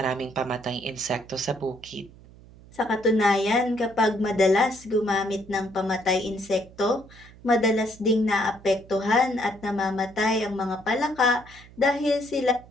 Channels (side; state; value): right; noise; hum, 22 dB below the sound